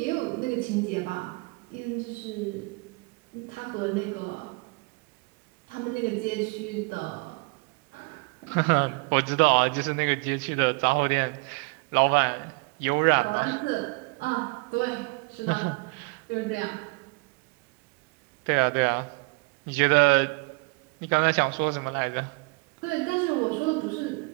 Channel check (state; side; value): quieter; left; 30.2 dB